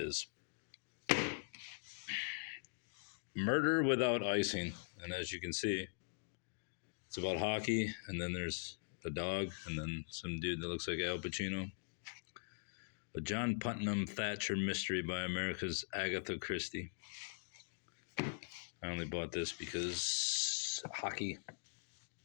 Murder Without Icing. And as you can see, it's about hockey, and then there's the dog, and then some dude that looks like Al Pacino. A John Putnam Thatcher mystery by America's Agatha Christie. I only bought this because hockey.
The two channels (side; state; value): right; silent; digital silence